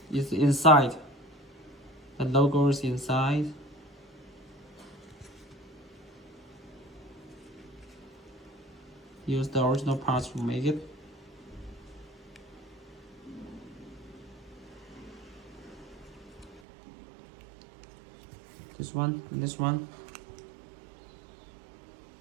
it's inside. The logo is inside. Use the original parts to make it. This one and this one.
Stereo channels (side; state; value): left; drops out; at 16.6 s